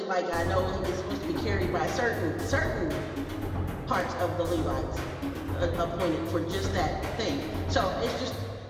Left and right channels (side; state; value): both; identical; correlation 1.00